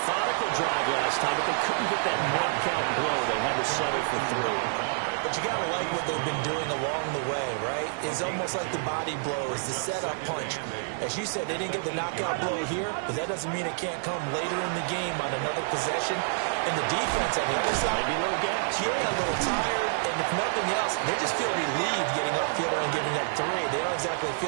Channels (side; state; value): left; silent; digital silence